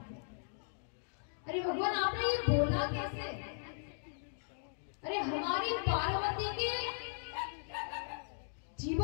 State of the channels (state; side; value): silent; right; digital silence